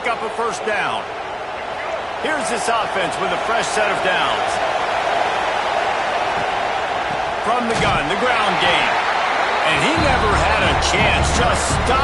up a first down. Here's this offense with a fresh set of downs. From the gun, the ground game. And he never had a chance. Just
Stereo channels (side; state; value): both; identical; correlation 1.00